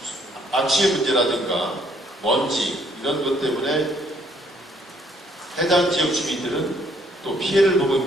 악취의 문제라든가 먼지 이런 것 때문에 해당 지역 주민들은 또 피해를 보고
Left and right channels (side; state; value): both; normal; correlation 0.66